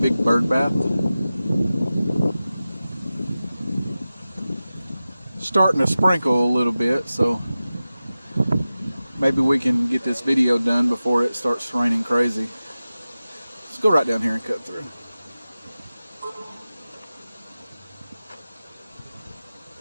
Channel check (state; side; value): inverted; both; correlation -0.95